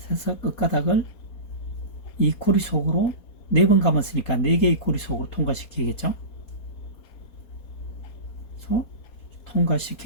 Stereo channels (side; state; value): right; late; 4.3 ms